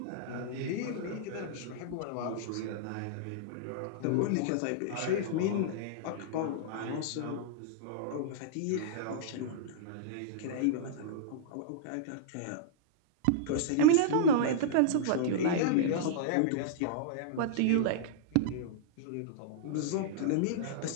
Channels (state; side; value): different; both; correlation -0.02